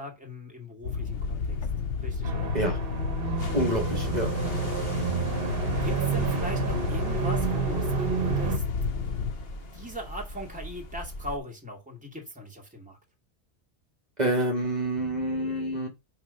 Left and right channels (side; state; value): both; normal; correlation -0.07